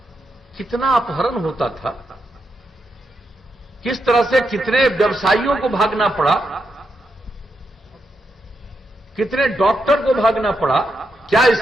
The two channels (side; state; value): both; normal; correlation 0.84